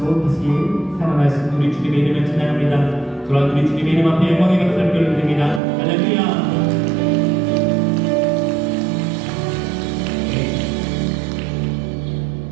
다시 살아나신 우리 주님의 이름을 찬양합니다. 돌아온 우리 주님의 이름 앞에 영광의 박수를 올려드립니다. 할렐루야.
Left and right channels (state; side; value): drops out; left; at 5.6 s